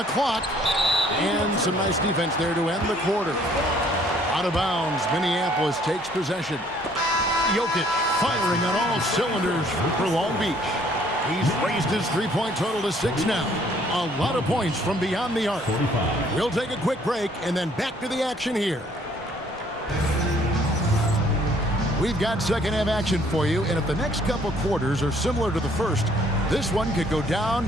clock. And some nice defense there to end the quarter. Out of bounds, Minneapolis takes possession. Jokic firing on all cylinders for Long Beach. He's raised his three-point total to 6 now. A lot of points from beyond the arc. We'll take a quick break and then back to the action here. We've got second half action for you, and if the next couple quarters are similar to the first, this one could go down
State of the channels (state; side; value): normal; both; correlation 0.61